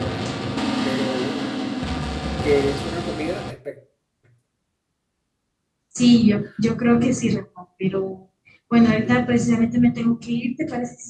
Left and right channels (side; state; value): both; identical; correlation 1.00